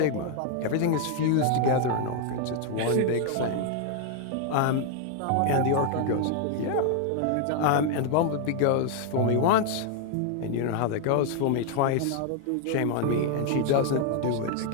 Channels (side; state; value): both; different; correlation 0.00